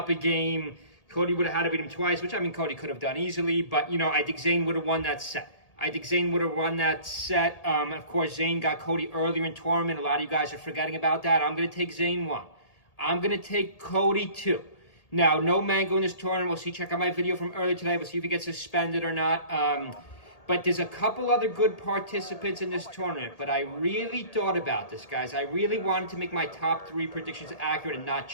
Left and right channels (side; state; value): right; late; 1.8 ms